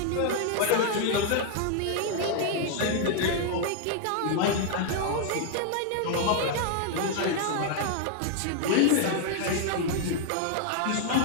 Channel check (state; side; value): different; both; correlation 0.00